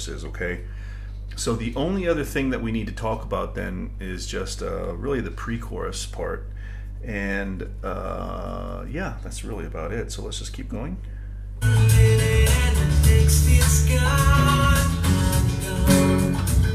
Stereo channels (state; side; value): identical; both; correlation 1.00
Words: okay? So the only other thing that we need to talk about then is just really the pre-chorus part, and yeah, that's really about it. So let's just keep going. All